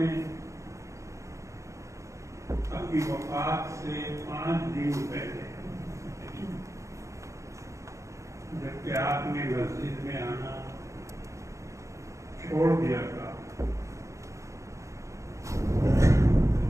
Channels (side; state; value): left; late; 0.15 ms